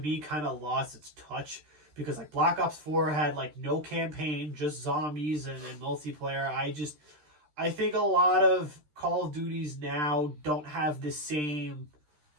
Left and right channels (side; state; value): left; late; 13 ms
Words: kind of lost its touch. Because Black Ops 4 had no campaign, just zombies and multiplayer. I think a lot of Call of Duties now don't have the same